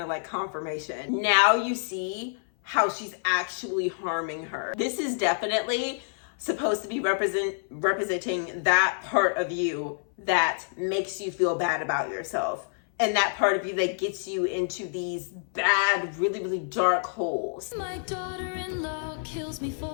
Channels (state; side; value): silent; right; 57 dB below the other